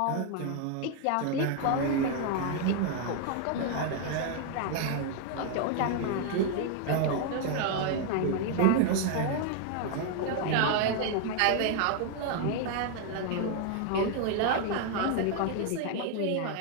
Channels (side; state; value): both; different; correlation 0.00